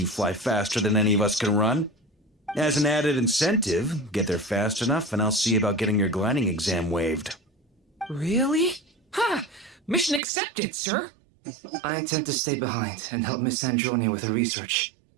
fly faster than any of us can run. As an added incentive, get there fast enough and I'll see about getting your gliding exam waived. Really? Ha! Mission accepted, sir. I intend to stay behind and help Miss Sandrone with her research.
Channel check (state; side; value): drops out; left; at 10.2 s